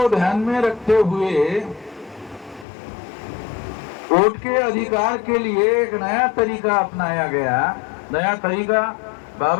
ध्यान में रखते हुए वोट के अधिकार के लिए एक नया तरीका अपनाया गया। नया तरीका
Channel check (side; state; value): right; drops out; at 2.7 s